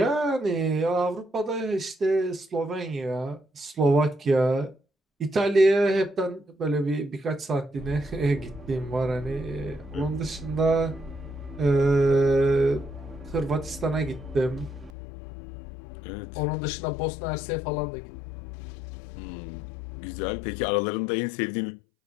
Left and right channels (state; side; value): drops out; right; at 14.9 s